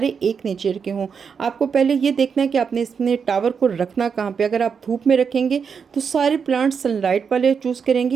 एक नेचर के हों। आपको पहले ये देखना है कि आपने इसमें टावर को रखना कहाँ पर। अगर आप धूप में रखेंगे तो सारे प्लांट्स सनलाइट वाले चूज़ करेंगे,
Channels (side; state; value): left; quieter; 6.3 dB